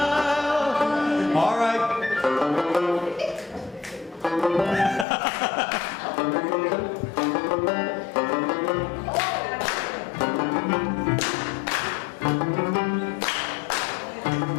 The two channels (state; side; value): drops out; right; at 5.1 s